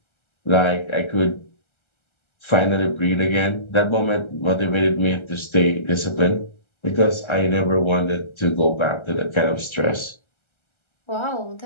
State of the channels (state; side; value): late; right; 1.3 ms